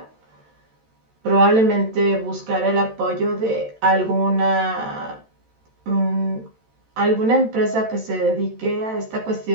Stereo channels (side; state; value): left; late; 13 ms